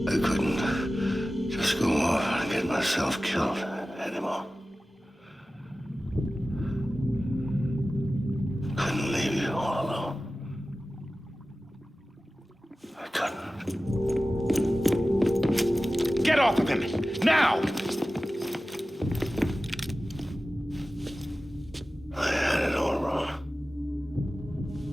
I couldn't just go off and get myself killed anymore. Couldn't leave you all alone. off of him! Now! I had it all wrong.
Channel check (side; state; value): both; normal; correlation 0.96